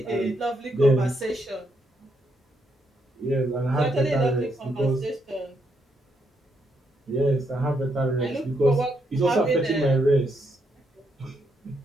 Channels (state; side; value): normal; both; correlation 0.78